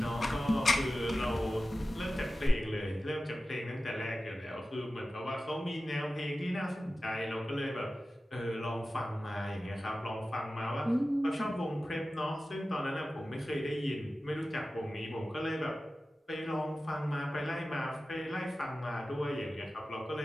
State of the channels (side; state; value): both; normal; correlation 0.95